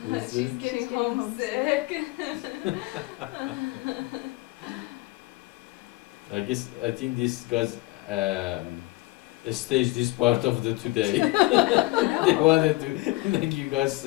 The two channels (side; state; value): right; quieter; 21.7 dB